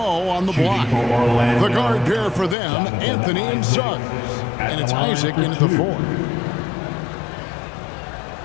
on the block. The guard pair for them, Anthony and Suggs. And it's Isaac in at the 4.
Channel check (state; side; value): drops out; right; at 2.6 s